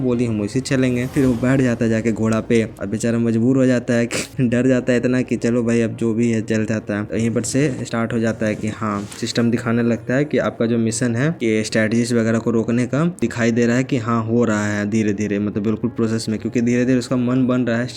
बोली हम वैसे चलेंगे। फिर वो बैठ जाता है जाके घोड़ा पे और बेचारा मजबूर हो जाता है कि डर जाता है इतना कि चलो भाई अब जो भी है चल जाता है। तो यहीं पर से स्टार्ट हो जाता है कि हाँ सिस्टम दिखाने लगता है कि आपका जो मिशन है कि स्ट्रेटेजीज वगैरह को रोकने का दिखाई दे रहा है कि हाँ हो रहा है धीरे धीरे, मतलब बिल्कुल प्रोसेस में, क्योंकि धीरे धीरे उसका मन बन रहा है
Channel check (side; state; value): both; identical; correlation 1.00